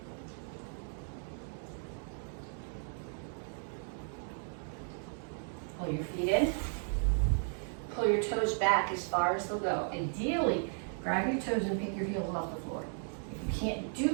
Pull your feet in. Pull your toes back as far as they'll go. Ideally, grab your toes and pick your heels off the floor. If you can't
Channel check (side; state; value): left; silent; 54 dB below the other